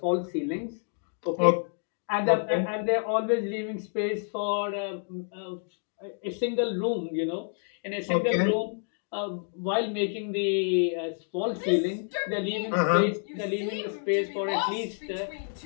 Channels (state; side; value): silent; right; 59 dB below the other